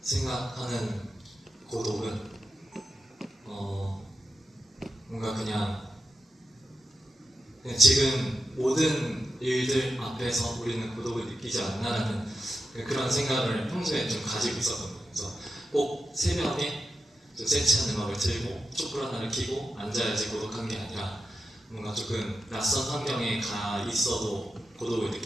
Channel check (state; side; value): normal; both; correlation 0.90